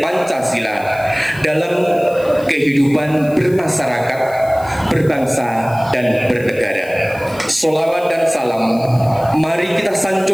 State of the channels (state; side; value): noise; left; hiss, 22 dB below the sound